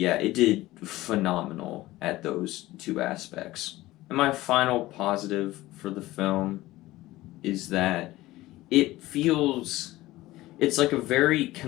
it did phenomenal at those two aspects. And my final positive for the film is that it feels it's like a very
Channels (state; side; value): quieter; right; 17.6 dB